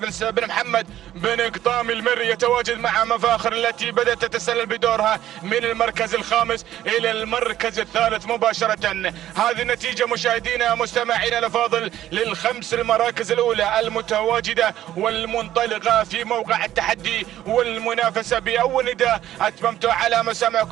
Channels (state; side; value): quieter; left; 12.7 dB